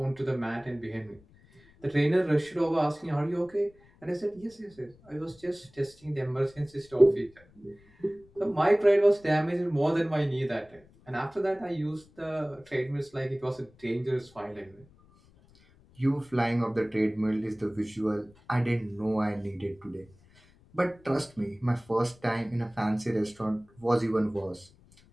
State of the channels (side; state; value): left; noise; rumble, 28 dB below the sound